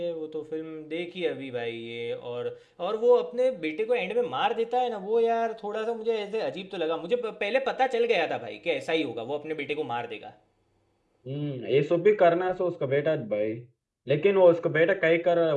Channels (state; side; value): identical; both; correlation 1.00